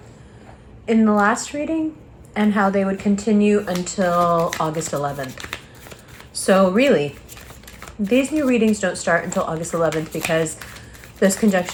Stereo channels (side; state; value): both; identical; correlation 1.00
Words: in the last reading and how they would continue until August 11th. So really, these new readings don't start until August 11th because those